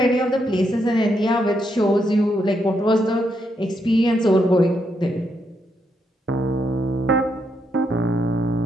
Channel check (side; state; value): both; normal; correlation 0.79